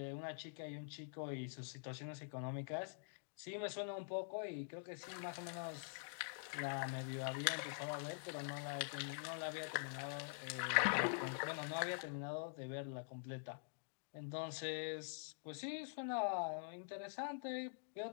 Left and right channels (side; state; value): right; silent; digital silence